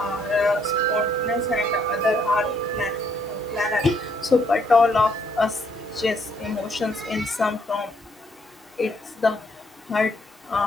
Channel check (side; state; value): both; normal; correlation 0.69